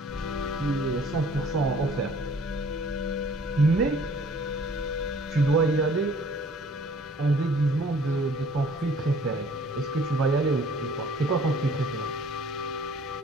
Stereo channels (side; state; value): both; normal; correlation 0.55